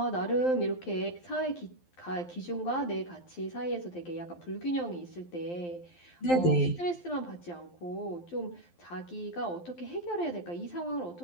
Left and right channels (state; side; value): late; right; 12 ms